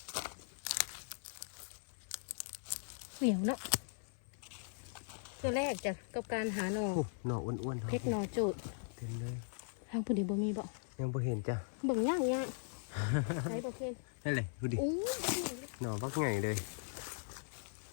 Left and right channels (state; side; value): silent; right; 52 dB below the other